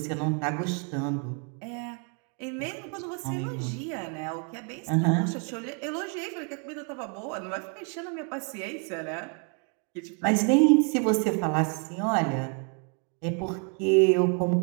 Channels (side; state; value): left; quieter; 37.8 dB